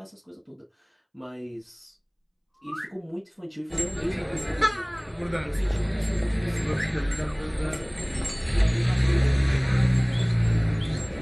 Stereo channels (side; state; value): both; identical; correlation 1.00